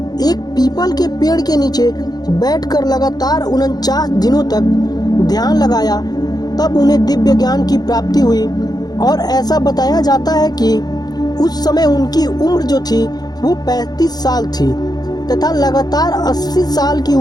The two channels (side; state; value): right; late; 0.19 ms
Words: एक पीपल के पेड़ के नीचे बैठकर लगातार 49 दिनों तक ध्यान लगाया, तब उन्हें दिव्य ज्ञान की प्राप्ति हुई। और ऐसा बताया जाता है कि उस समय उनकी उम्र जो थी वो 35 साल थी तथा लगातार 80 साल की